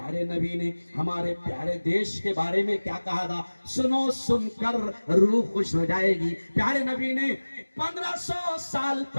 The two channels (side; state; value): both; inverted; correlation -1.00